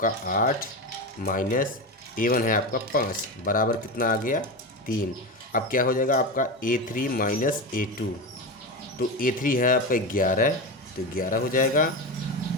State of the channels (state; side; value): normal; both; correlation 0.20